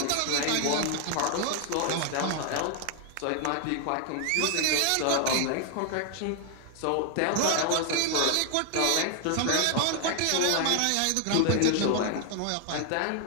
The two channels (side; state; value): both; different; correlation 0.00